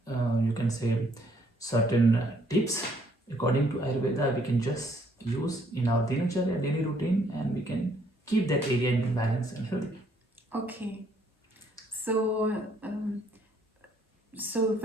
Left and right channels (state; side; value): normal; both; correlation 0.67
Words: you can say certain tips according to Ayurveda we can just use in our dinacharya daily routine, and we can keep that area in balance and healthy. Okay. So